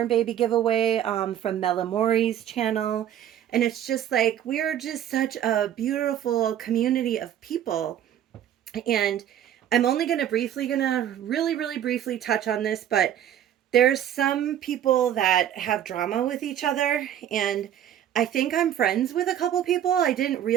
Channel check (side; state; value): left; quieter; 10.6 dB